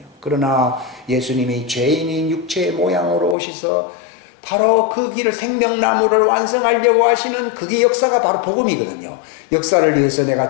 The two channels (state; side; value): drops out; right; at 3.4 s